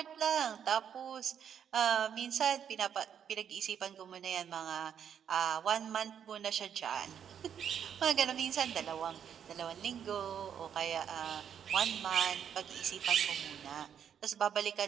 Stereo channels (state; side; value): quieter; left; 8.5 dB